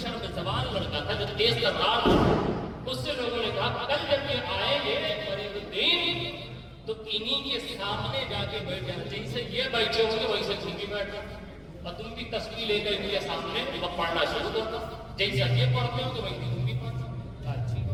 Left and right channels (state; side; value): identical; both; correlation 1.00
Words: شرم زبان لڑکا تھا جو تیز ترار تھا، اس سے لوگوں نے کہا کل جب یہ آئیں گے فرید الدین تو انہی کے سامنے جا کے بیٹھ جانا، جیسے یہ بیٹھے ہوں گے ویسے تم بھی بیٹھنا، اور تم بھی تصویر لے کر کے سامنے وہ پڑھنا شروع کرتا، جیسا یہ پڑھتے ہو تو ویسے تم بھی پڑھنا۔ اچھی